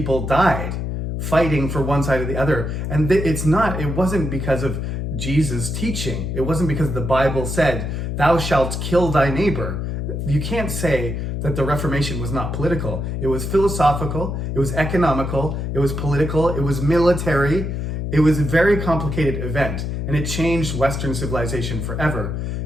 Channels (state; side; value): noise; left; hum, 3 dB below the sound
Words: died fighting for one side or the other. And it wasn't because of Jesus' teaching. It wasn't because the Bible said, thou shalt kill thy neighbor. You can't say that the Reformation was not political. It was philosophical, it was economical, it was political, it was military. It was a very complicated event, and it changed Western civilization forever.